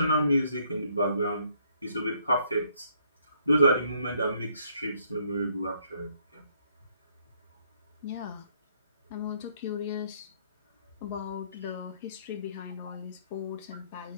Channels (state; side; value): inverted; both; correlation -0.68